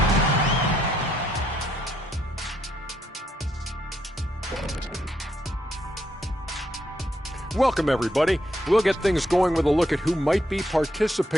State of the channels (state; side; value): normal; both; correlation 0.75